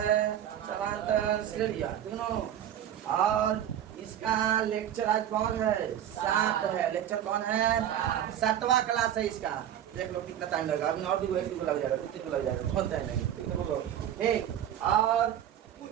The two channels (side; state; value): left; quieter; 10.5 dB